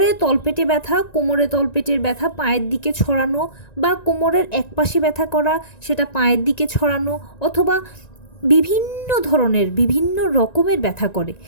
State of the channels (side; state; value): right; late; 1.9 ms